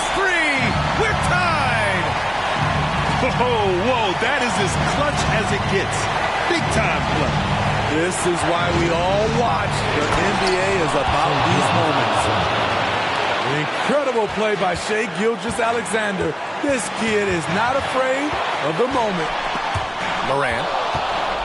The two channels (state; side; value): identical; both; correlation 1.00